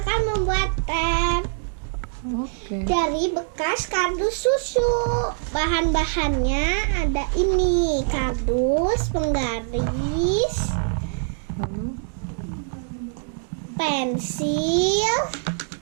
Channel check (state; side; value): silent; left; digital silence